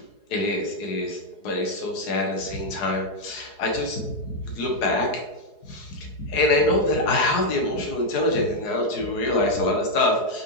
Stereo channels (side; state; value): right; late; 4.8 ms